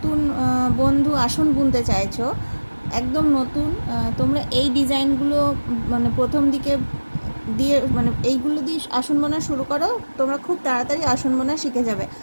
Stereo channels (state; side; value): inverted; both; correlation -1.00